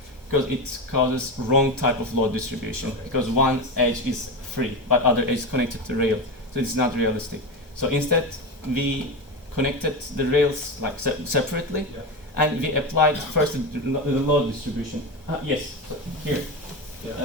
because it causes wrong type of load distribution. Okay. Because one edge is free, but other edge is connected to rail, so it's not realistic. So instead, we connected the rails like separately, Yeah. and we applied first the load distribution. Yes, so here.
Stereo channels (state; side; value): normal; both; correlation 0.19